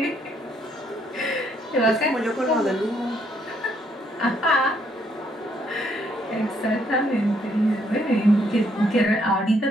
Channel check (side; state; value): both; normal; correlation 0.71